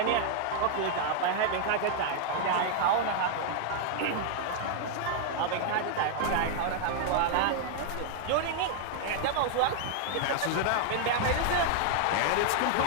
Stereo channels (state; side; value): different; both; correlation 0.00